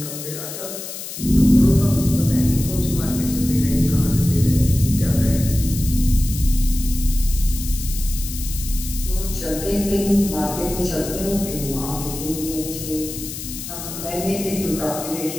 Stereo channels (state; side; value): noise; left; hiss, 9 dB below the sound